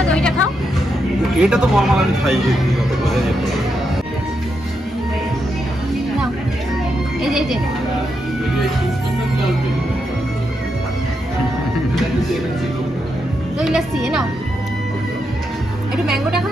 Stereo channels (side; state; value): both; normal; correlation 0.83